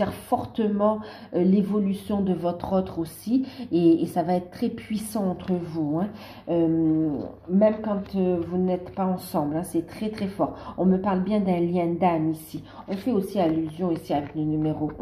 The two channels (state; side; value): identical; both; correlation 1.00